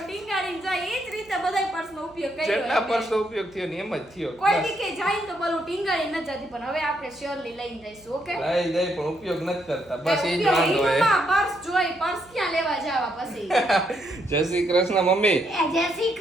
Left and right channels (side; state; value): right; noise; hum, 27 dB below the sound